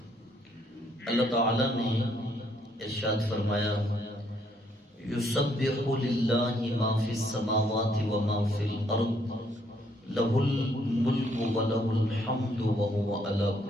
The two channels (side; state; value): both; normal; correlation 0.69